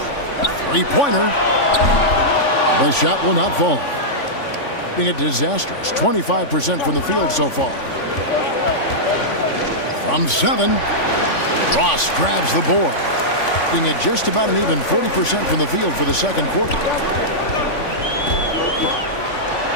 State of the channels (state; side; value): late; right; 3.5 ms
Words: Three-pointer. The shot will not fall. Being a disastrous 25% from the field so far. From 7, Ross grabs the board. Being at just about an even 40% from the field for the second quarter.